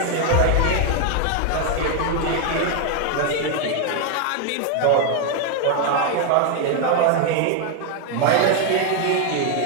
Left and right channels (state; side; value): different; both; correlation 0.01